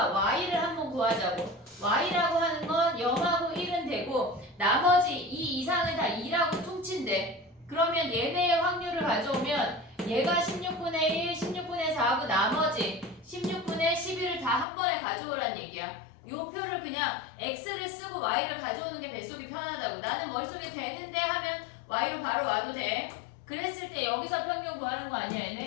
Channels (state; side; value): drops out; right; at 14.7 s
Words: y를 한번 구하자고. y라고 하는 건 0하고 1은 되고 나머지 2 이상은 다 2라고 퉁친대. 그러면 얘네의 확률을 가져오면 얘가 16분의 1, 16분의 4하고 나머지 16분의 11을 다 한 번에 가져오란 얘기야. 요 표를 그냥 x를 쓰고 y를 가져오는 게 뱃속이 편하다고. 나는 머릿속에 되는데 하면 y로 바로 와도 돼. 그랬을 때 여기서 평균 구하는 거 아니야